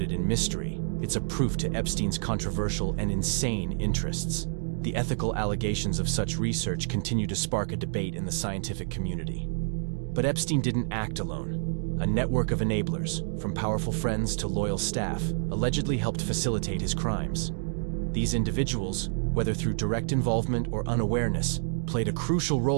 in mystery, it's a proof to Epstein's controversial and insane interests. The ethical allegations of such research continue to spark a debate in the scientific community. But Epstein didn't act alone. A network of enablers, from powerful friends to loyal staff, allegedly helped facilitate his crimes. These individuals, whether through direct involvement or unawareness, played a crucial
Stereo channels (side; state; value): left; silent; digital silence